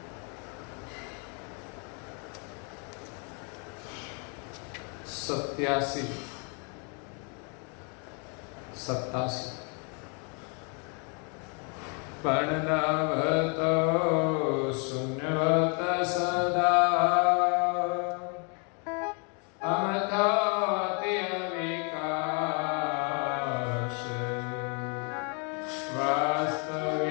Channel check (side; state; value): right; quieter; 37.1 dB